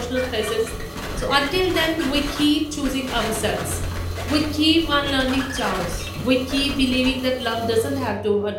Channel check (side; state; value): both; identical; correlation 1.00